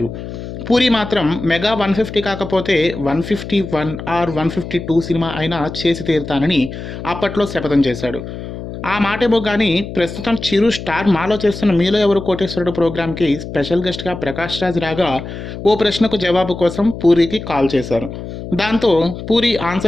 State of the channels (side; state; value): left; noise; hum, 9 dB below the sound